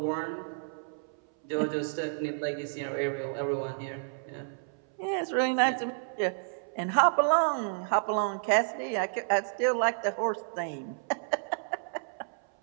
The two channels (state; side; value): silent; left; 57 dB below the other